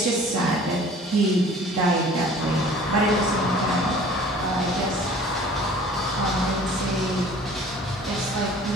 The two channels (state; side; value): normal; both; correlation 0.49